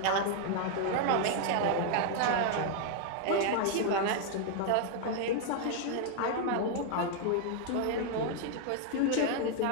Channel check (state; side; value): different; both; correlation 0.00